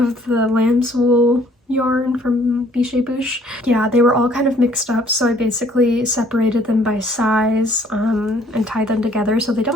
the lamb's wool yarn from Bichet Bouche. Yeah, they were all kind of mixed up, so I basically separated them by size and tied them together so they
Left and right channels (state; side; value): normal; both; correlation 0.60